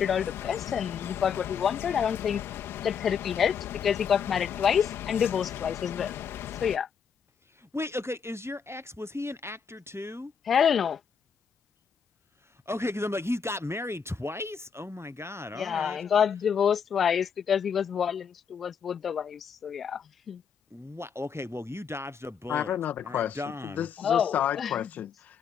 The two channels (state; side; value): quieter; right; 7.0 dB